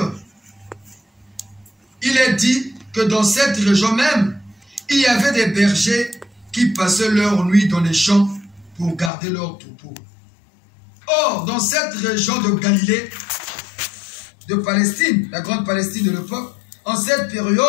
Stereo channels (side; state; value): right; drops out; at 9.1 s